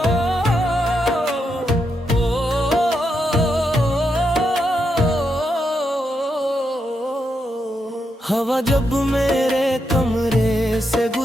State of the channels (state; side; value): normal; both; correlation 0.83